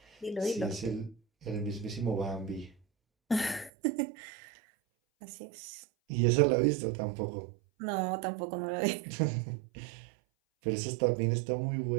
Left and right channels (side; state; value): left; drops out; at 3.7 s